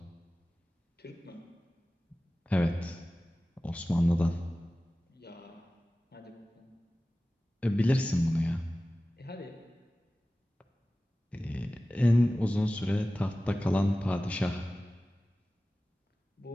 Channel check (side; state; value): both; normal; correlation 0.97